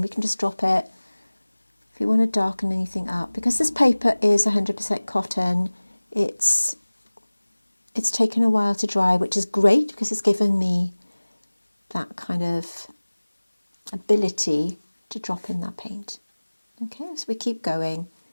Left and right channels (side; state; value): both; inverted; correlation -1.00